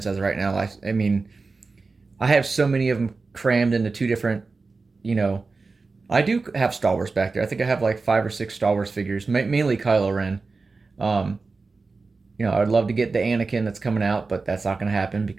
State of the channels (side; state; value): left; quieter; 4.0 dB